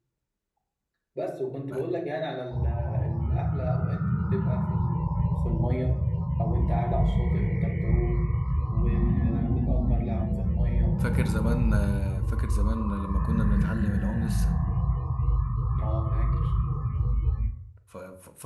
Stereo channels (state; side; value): identical; both; correlation 1.00